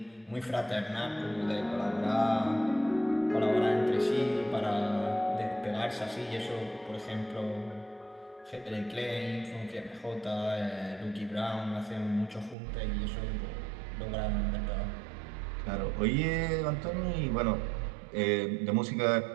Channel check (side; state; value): left; drops out; at 12.6 s